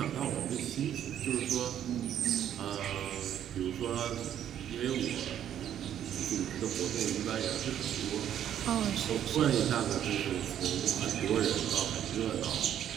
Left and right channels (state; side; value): quieter; left; 10.3 dB